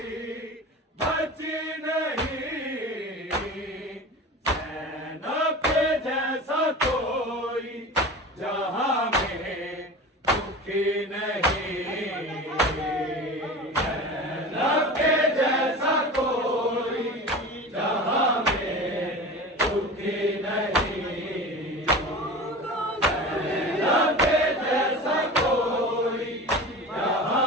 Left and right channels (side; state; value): both; normal; correlation 0.33